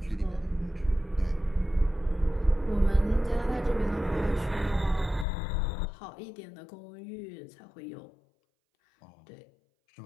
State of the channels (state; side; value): drops out; right; at 5.2 s